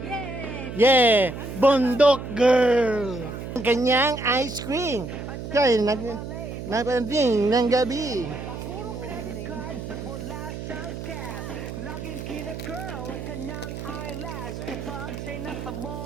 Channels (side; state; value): right; noise; hum, 8 dB below the sound